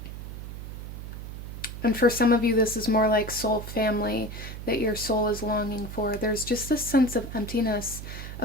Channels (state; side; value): noise; right; hum, 9 dB below the sound